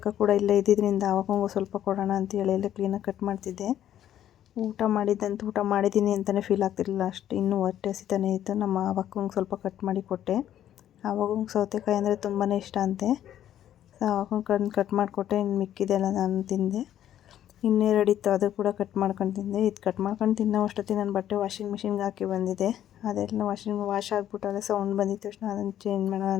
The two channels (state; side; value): quieter; right; 11.3 dB